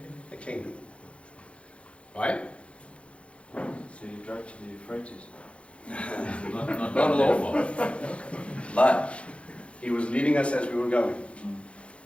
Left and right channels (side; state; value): right; late; 0.060 ms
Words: the kingdom. Right? So you drove to the Euphrates? Not all. But he was leading us as we were going.